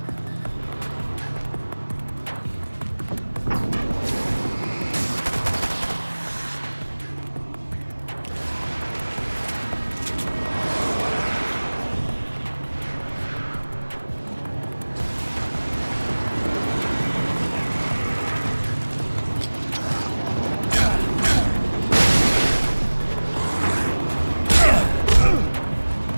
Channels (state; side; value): inverted; both; correlation -1.00